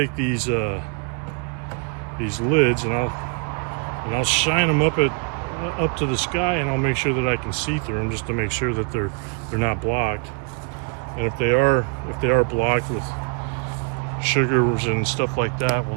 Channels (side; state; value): left; quieter; 34.7 dB